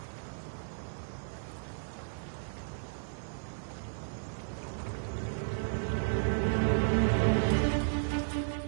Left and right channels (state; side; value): silent; left; 55 dB below the other